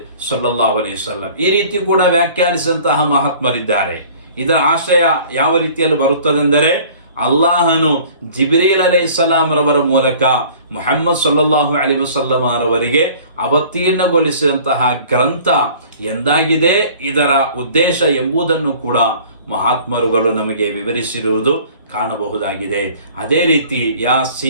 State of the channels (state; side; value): inverted; both; correlation -0.49